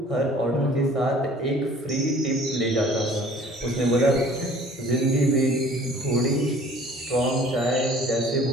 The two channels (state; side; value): normal; both; correlation 0.51